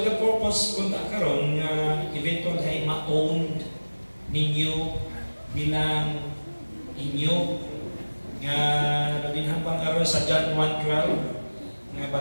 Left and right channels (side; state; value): both; inverted; correlation -1.00